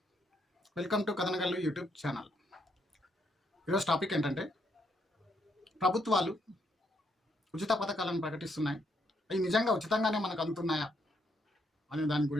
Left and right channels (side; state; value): both; normal; correlation 0.74